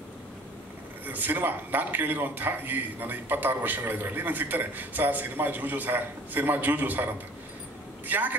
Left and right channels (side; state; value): both; normal; correlation 0.49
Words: ಸಿನಿಮಾ ನಾನು ಕೇಳಿರುವಂತಹ ಈ ನನ್ನ 26 ವರ್ಷಗಳ ಇದರಲ್ಲಿ ನಂಗೆ ಸಿಗ್ತಾರೆ, ಸರ್ ಸಿನಿಮಾ ಜೂಜು ಸರ್, ಸಿನಿಮಾ ಜೂಜು ಸರ್ ಅಂತ.